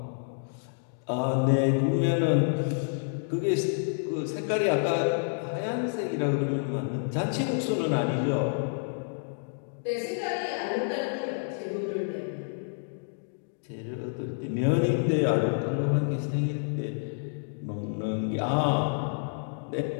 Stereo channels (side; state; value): right; silent; digital silence